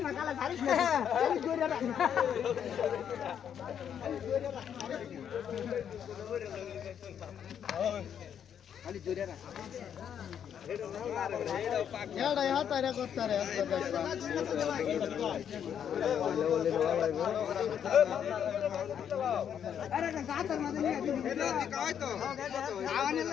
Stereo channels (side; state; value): right; quieter; 8.7 dB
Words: খালি জোরে রাখ এটা ইয়া তারে করতারে আরে গাতার মধ্যে নিয়ে দিবি এটা কই তো আওয়ানে